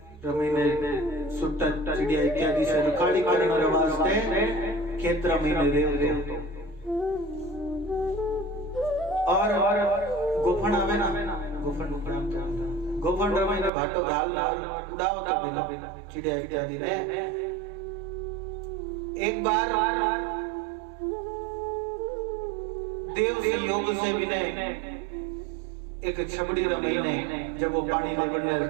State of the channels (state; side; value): drops out; left; at 13.7 s